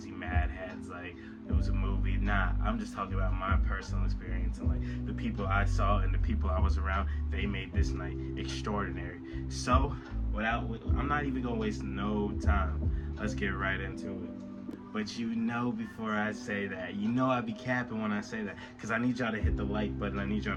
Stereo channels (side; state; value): both; identical; correlation 1.00